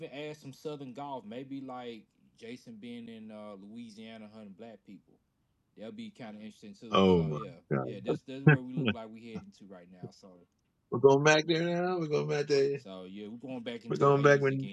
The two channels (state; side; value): identical; both; correlation 1.00